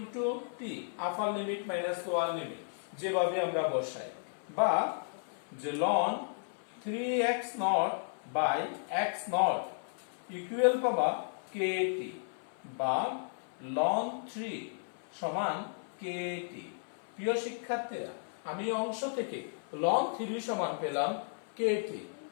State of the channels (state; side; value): silent; right; 55 dB below the other